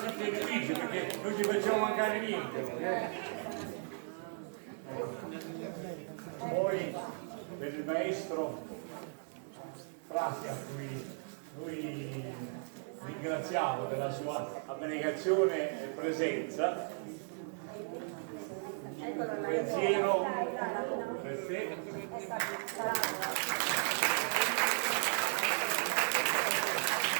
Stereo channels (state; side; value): silent; left; 54 dB below the other